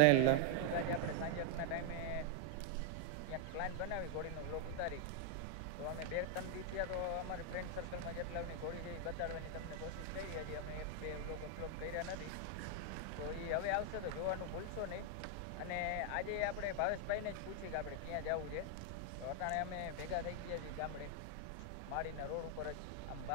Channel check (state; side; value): different; both; correlation 0.00